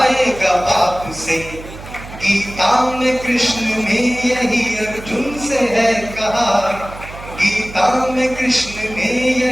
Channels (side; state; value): right; noise; hum, 14 dB below the sound